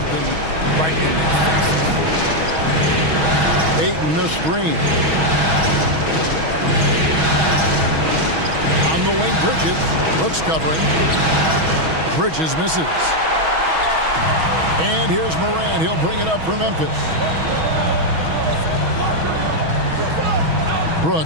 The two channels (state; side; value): late; left; 6.2 ms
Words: right in their faces. Ayton the screen. On the wing, Bridges. Brooks covering. Bridges misses. And here's Morant. He'll bring it up for Memphis.